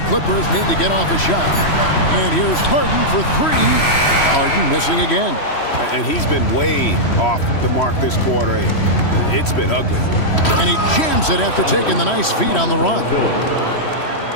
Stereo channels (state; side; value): late; right; 3.1 ms